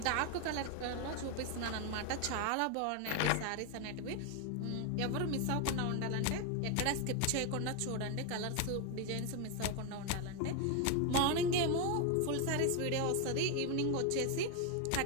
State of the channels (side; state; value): both; different; correlation 0.01